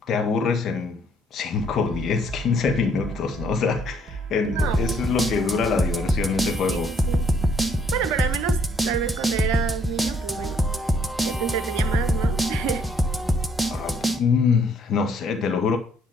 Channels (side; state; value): both; normal; correlation 0.66